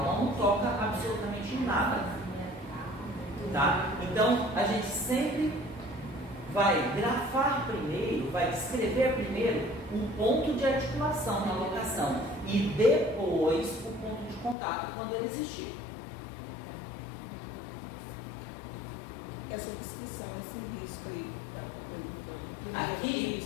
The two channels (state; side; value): drops out; right; at 14.6 s